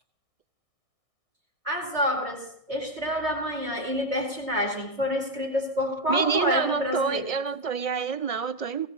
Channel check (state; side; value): late; right; 1.6 ms